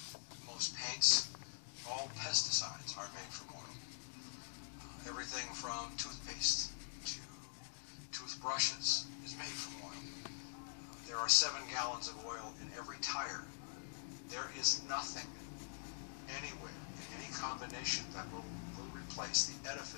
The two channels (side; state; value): right; silent; digital silence